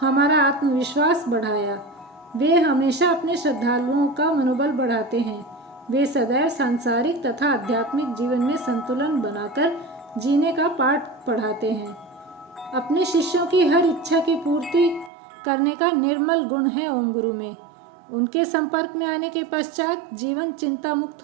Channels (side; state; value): left; drops out; at 15.1 s